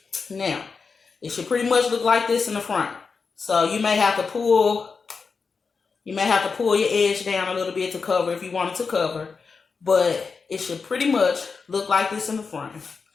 Now, it should pretty much look like this in the front. So you may have to pull your edge down a little bit to cover if you want it to cover. But it should pretty much look like this in the front.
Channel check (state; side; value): quieter; right; 5.0 dB